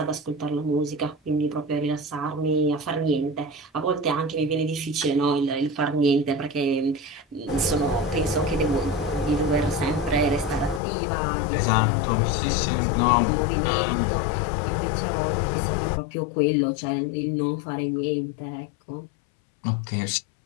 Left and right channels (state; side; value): drops out; right; at 10.8 s